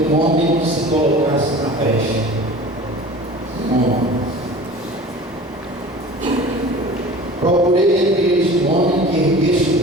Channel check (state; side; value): normal; both; correlation 0.40